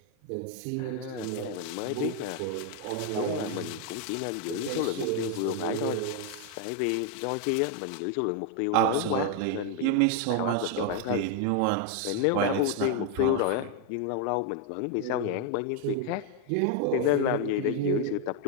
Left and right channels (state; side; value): different; both; correlation 0.01